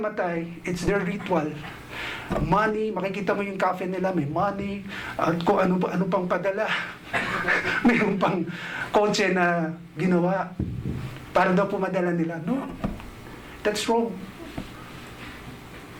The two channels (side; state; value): both; identical; correlation 1.00